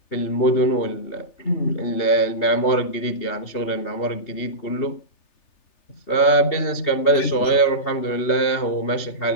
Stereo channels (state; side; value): late; right; 3.3 ms